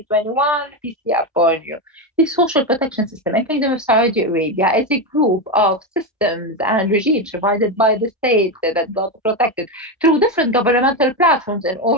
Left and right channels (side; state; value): both; normal; correlation 0.11